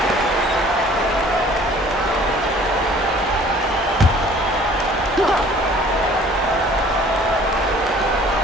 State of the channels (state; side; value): normal; both; correlation 0.52